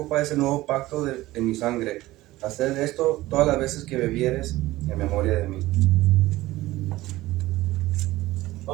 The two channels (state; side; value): quieter; left; 17.5 dB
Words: es el nuevo pacto en mi sangre. Haced esto todas las veces que bebieres en memoria de mí.